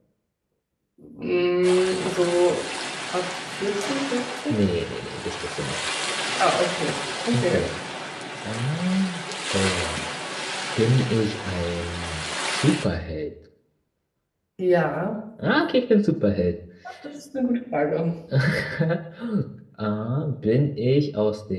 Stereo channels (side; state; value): both; identical; correlation 1.00